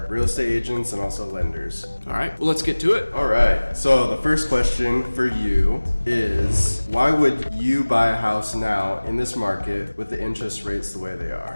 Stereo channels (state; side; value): inverted; both; correlation -1.00